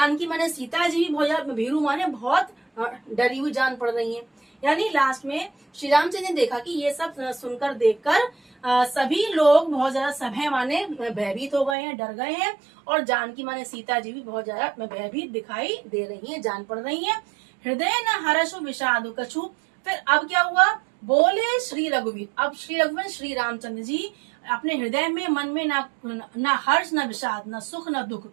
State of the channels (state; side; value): drops out; left; at 11.8 s